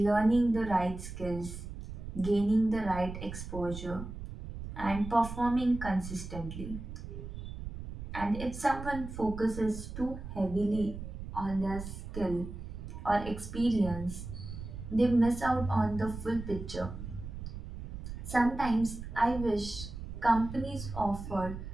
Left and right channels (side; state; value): right; noise; rumble, 9 dB below the sound